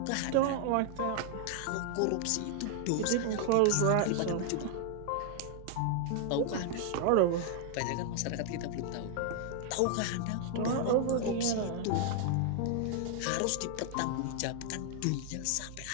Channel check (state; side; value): different; both; correlation 0.00